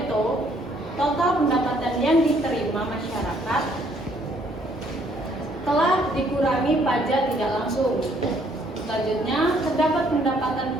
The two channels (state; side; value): normal; both; correlation 0.65